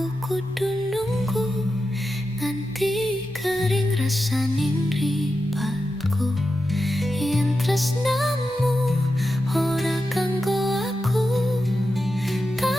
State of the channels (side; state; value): both; normal; correlation 0.90